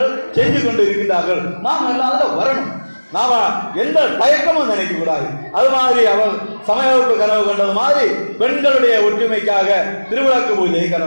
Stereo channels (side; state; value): both; inverted; correlation -1.00